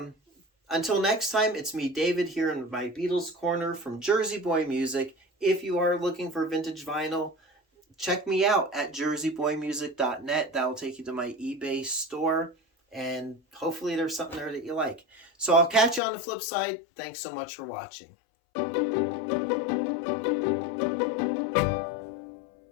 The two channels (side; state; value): right; drops out; at 16.0 s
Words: until next time, it's me, David, here in my Beatles Corner from Jersey Boy Music. If you are looking for vintage vinyl, check me out at jerseyboymusic.net. That will take you to my eBay store, and hopefully there's something there that you like. So I'll catch you on the flip side. Thanks so much for watching.